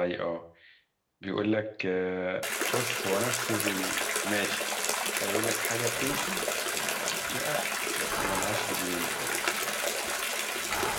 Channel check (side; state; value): both; identical; correlation 1.00